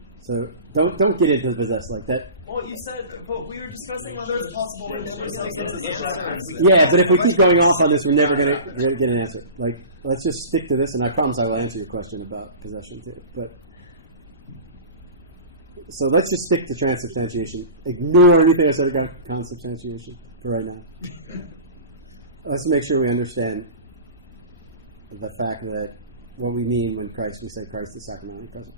So don't get into the possess like that. Well, you said, but we were discussing whether it's possible. We're never going to get an answer. Yeah, but if we keep going off on this, we're never going to get an answer. Like, let's just stick to this, and I promise I will answer your question about possession too. But so let's just stick to transubstantiation. Ignore anything I said about consubstantiation for right now. Let's make sure we understand the fact that what we mean when we say Christ is sacramentally present.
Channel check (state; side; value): inverted; both; correlation -0.36